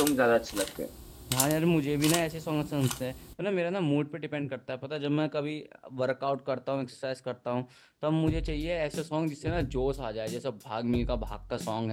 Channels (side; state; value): both; identical; correlation 1.00